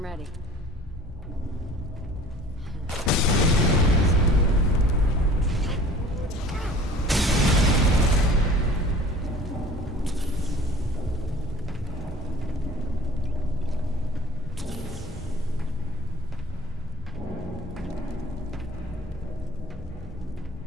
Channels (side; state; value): both; normal; correlation 0.47